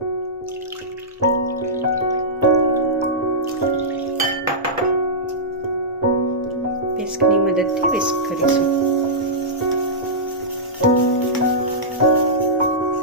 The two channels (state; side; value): normal; both; correlation -0.14